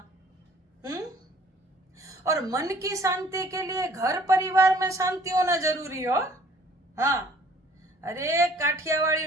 और मन की शांति के लिए घर परिवार में शांति होना जरूरी हो। हाँ, अरे काठियावाड़ी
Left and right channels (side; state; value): both; normal; correlation 0.56